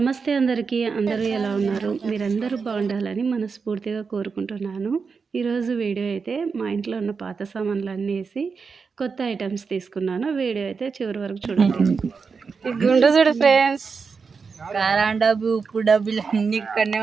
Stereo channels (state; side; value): quieter; left; 5.2 dB